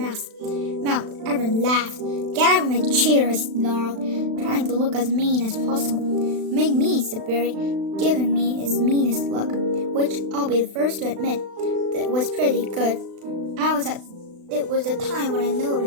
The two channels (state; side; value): late; left; 36 ms